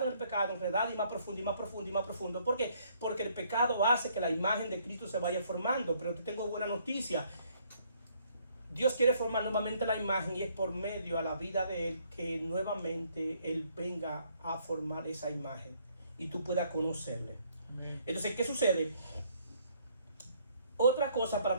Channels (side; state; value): both; inverted; correlation -0.66